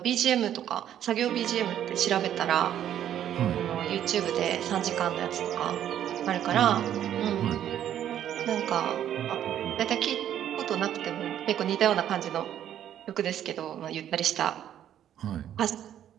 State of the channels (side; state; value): left; quieter; 10.7 dB